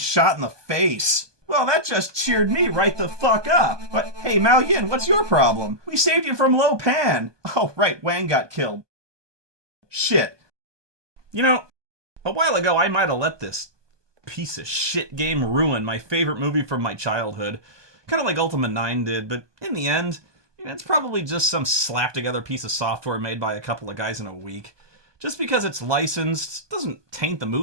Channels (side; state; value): left; late; 1.2 ms